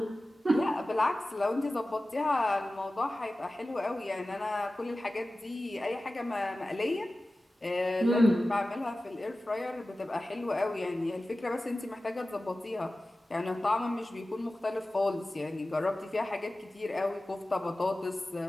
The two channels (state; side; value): normal; both; correlation 0.96